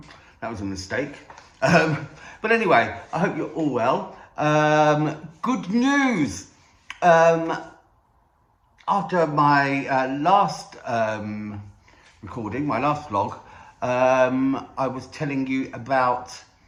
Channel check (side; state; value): both; identical; correlation 1.00